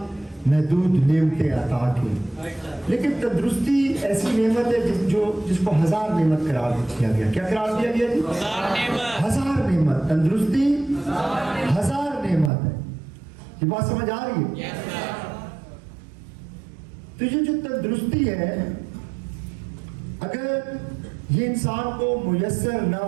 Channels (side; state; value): left; drops out; at 12.5 s